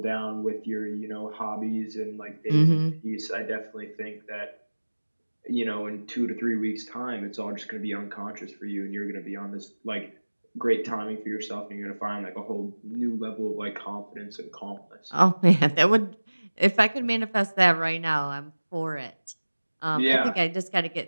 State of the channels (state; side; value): inverted; both; correlation -1.00